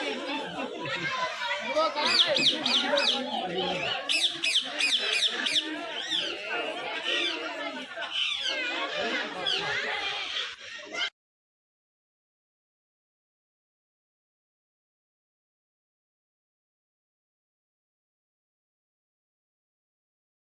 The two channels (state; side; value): identical; both; correlation 1.00